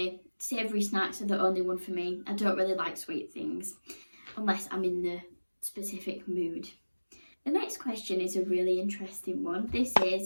Savoury snacks are the only one for me. I don't really like sweet things unless I'm in the specific mood. The next question is a really interesting one. This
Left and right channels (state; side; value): inverted; both; correlation -1.00